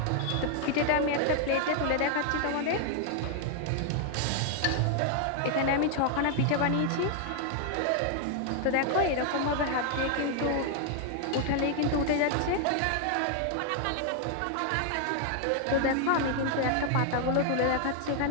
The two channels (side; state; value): both; different; correlation 0.00